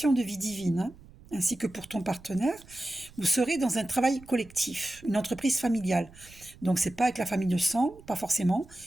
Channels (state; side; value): noise; right; rumble, 22 dB below the sound